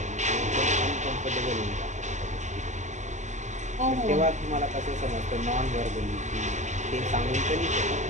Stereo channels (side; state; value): left; late; 0.34 ms